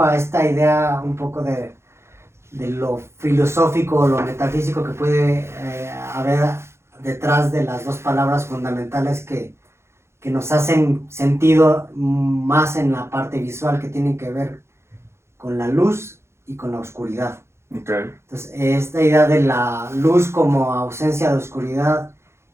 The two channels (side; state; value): left; late; 0.13 ms